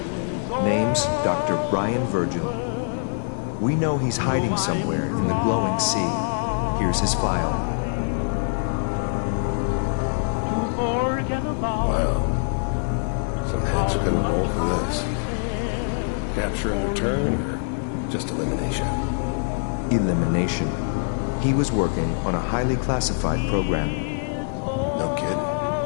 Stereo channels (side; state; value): right; silent; digital silence